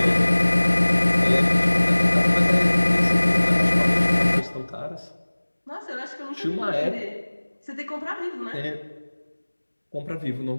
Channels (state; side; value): inverted; both; correlation -1.00